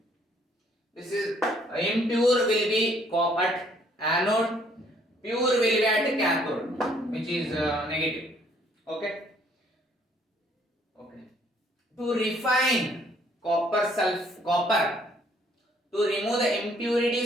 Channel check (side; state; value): both; normal; correlation 0.64